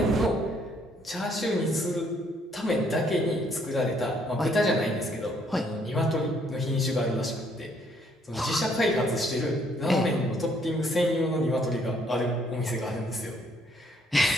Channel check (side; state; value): both; normal; correlation 0.67